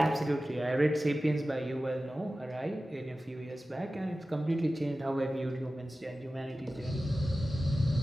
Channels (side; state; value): both; normal; correlation 0.95